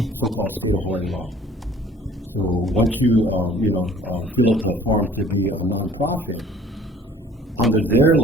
so-called state of Hawaii law. So once you, fill out the form to be a nonprofit, under their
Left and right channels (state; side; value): normal; both; correlation 0.52